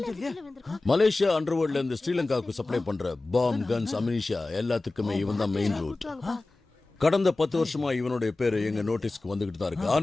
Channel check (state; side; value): quieter; right; 3.2 dB